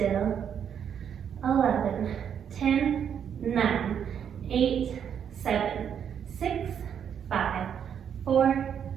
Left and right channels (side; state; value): left; quieter; 8.3 dB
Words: 11, 10, 9, 8, 7, 6, 5, 4,